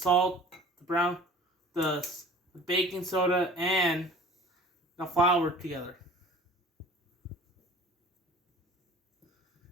the baking soda, and the flour together.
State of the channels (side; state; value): both; normal; correlation 0.45